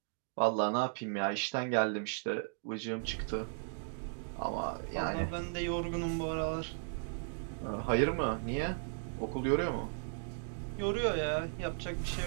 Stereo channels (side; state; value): left; silent; digital silence